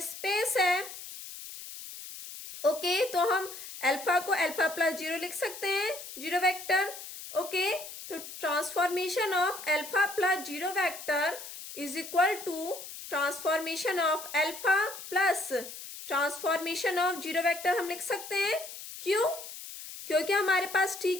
स्पेस है। ओके, तो हम अल्फा को अल्फा प्लस जीरो लिख सकते हैं, जीरो वेक्टर। ओके, तो transformation of alpha plus zero vector is equal to transformation of alpha plus transformation of zero vector हम लिख सकते हैं। क्यों, क्योंकि हमारे पास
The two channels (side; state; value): left; noise; hiss, 12 dB below the sound